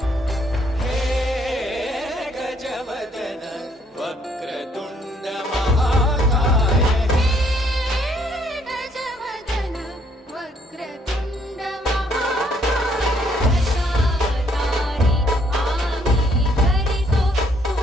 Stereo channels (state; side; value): normal; both; correlation 0.67